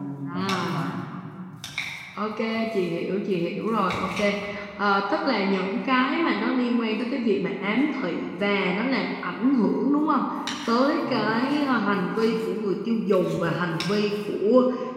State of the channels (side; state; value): both; identical; correlation 1.00